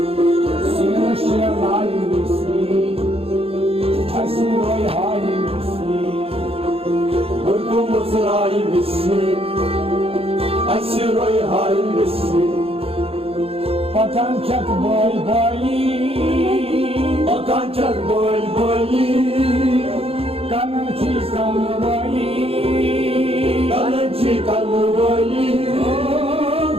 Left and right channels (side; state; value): left; late; 0.28 ms